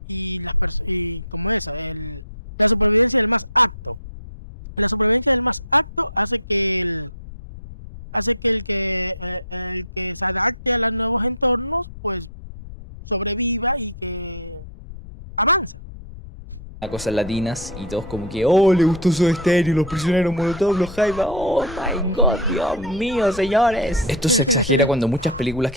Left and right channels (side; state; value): left; noise; rumble, 14 dB below the sound